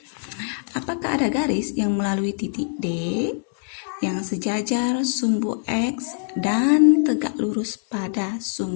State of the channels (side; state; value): right; silent; 63 dB below the other